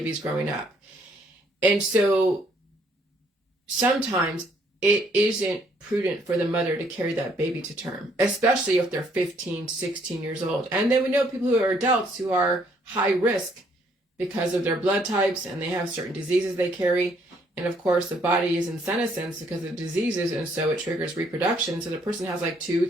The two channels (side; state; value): both; normal; correlation 0.67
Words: growing up. And so sometimes it isn't prudent for the mother to carry that baby to term, especially if they're 15, 16 years old. And then we know people who are adults who are high risk because of their blood types, and they have certain diseases they carry. And of course, the body is in senescence because of diseases, and so it triggers reproduction. So the person has like 2,